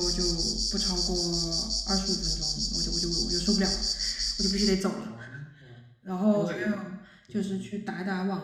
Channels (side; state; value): both; identical; correlation 1.00